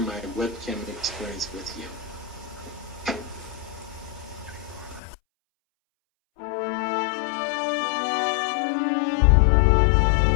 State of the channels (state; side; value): drops out; right; at 5.0 s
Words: webcam experience with you. Thank